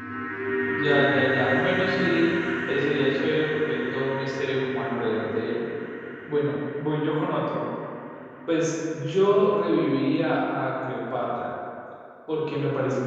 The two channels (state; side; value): identical; both; correlation 1.00